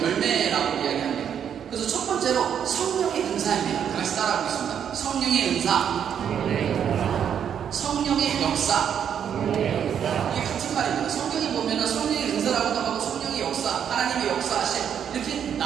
열매라고 이야기합니다. 그래서 첫 번째로 성령의 은사입니다. 같이 따라하겠습니다. 성령의 은사, 성령의 역사. 이게 같은 말입니다. 성경에 보면 성령의 은사라고도 하고 성령의 역사, 하나님의 역사하심 이렇게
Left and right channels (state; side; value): quieter; left; 8.5 dB